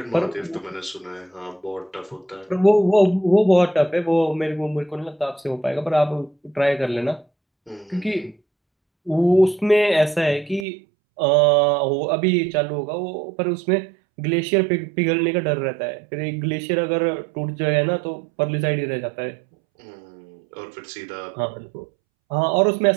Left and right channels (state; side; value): drops out; left; at 10.7 s